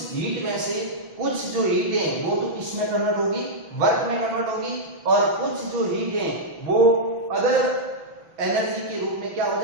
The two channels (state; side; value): late; left; 6.0 ms